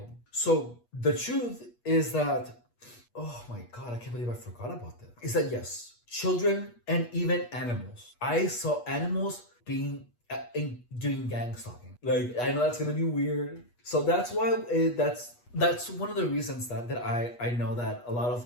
So the truth is that, oh my god, I can't believe I forgot about that. Is that yes, children and even animals. I saw animals doing gang stalking. Like I know that's gonna be weird. So that's why that's one of the reasons that I know that a lot of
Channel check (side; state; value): right; late; 8.3 ms